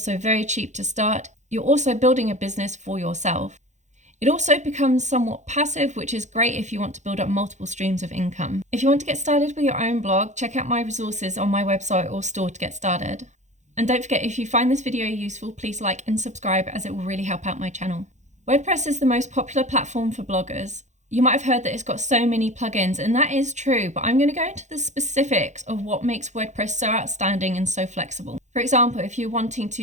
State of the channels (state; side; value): late; left; 0.34 ms